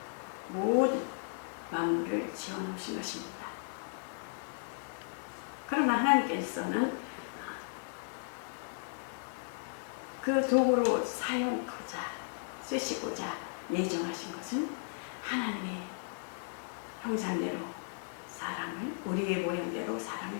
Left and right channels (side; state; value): right; silent; digital silence